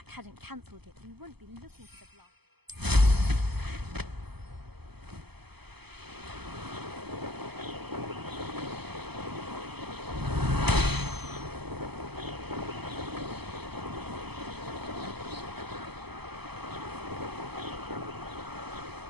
hadn't cancelled it, we wouldn't be looking for the block.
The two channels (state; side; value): late; left; 0.98 ms